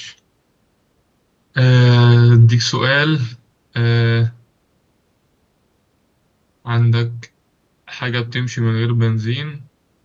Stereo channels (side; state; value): both; identical; correlation 1.00